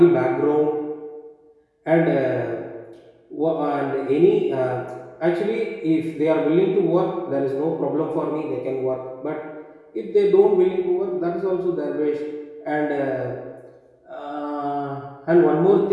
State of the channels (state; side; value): identical; both; correlation 1.00